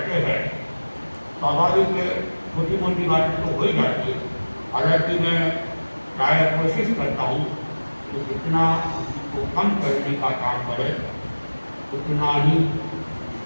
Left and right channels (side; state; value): both; inverted; correlation -1.00